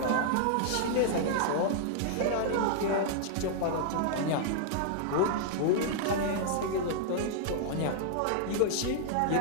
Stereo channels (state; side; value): different; both; correlation -0.01